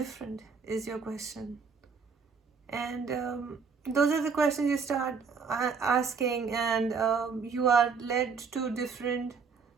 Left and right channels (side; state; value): left; quieter; 5.5 dB